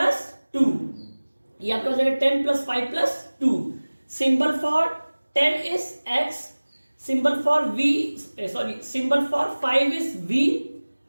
2. ये आपका हो जाएगा 10 plus 5 plus 2. Symbol for 10 is x, symbol for symbol for 5 is v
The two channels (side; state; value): both; inverted; correlation -1.00